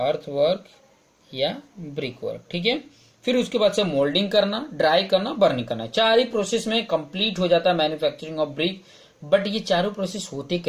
या ब्रिक वर्क, ठीक है। फिर उसके बाद से मोल्डिंग करना, ड्राई करना, बर्निंग करना। 4 ही प्रोसेस में कंप्लीट हो जाता है मैन्युफैक्चरिंग ऑफ ब्रिक। बट ये चारों प्रोसेस होते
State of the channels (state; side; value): identical; both; correlation 1.00